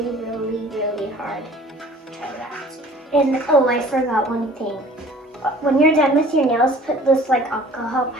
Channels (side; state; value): both; normal; correlation 0.48